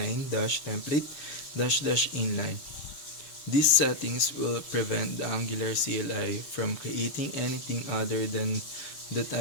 -template -inline. These settings will prevent the Angular CLI from creating anything other than the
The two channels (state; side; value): late; right; 6.9 ms